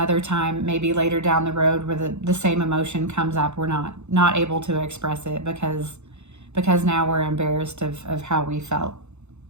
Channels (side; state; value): left; late; 0.82 ms